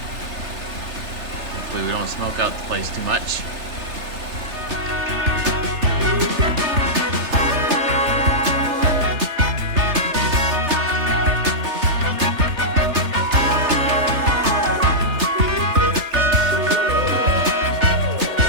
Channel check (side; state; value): left; late; 3.3 ms